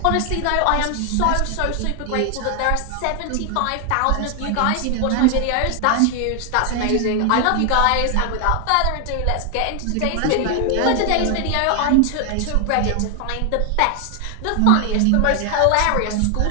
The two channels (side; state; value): both; different; correlation 0.00